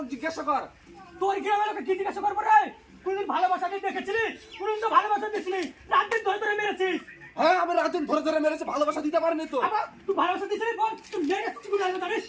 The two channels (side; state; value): both; identical; correlation 1.00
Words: জিজ্ঞাসা কর। তোর গ্রামের লোকে কি জিজ্ঞাসা করবো রে? কোনদিন ভালোবাসা দিয়ে দেখেছিলি? কোনদিন তো ভালোবাসা দিছিলি, রাত দিন ধরে ধরে মেরেছিস। হ্যাঁ, আমি রাতুন ধরে ধরে মেরেছে, ভালোবাসা দিতে পারিনি তো। আবার তুই ভালোবাসা দিছিলি, বল তুই মেরেছিস, তুই জানিস জানিস?